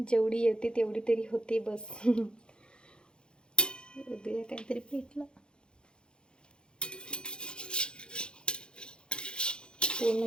येते तेवढी तरी होते बस. उद्या काहीतरी पेटलं. पूर्ण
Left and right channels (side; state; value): right; late; 0.050 ms